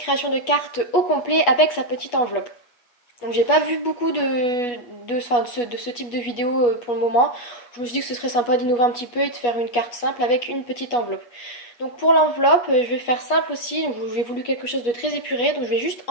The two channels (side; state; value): right; late; 8.2 ms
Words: de carte au complet avec sa petite enveloppe. Donc j'ai pas vu beaucoup de ce type de vidéo pour le moment. Je me suis dit que ce serait sympa d'innover un petit peu et de faire une carte simple avec une petite enveloppe. Donc pour l'enveloppe, je vais faire simple aussi. Donc j'ai voulu quelque chose de très épuré. Donc je vais juste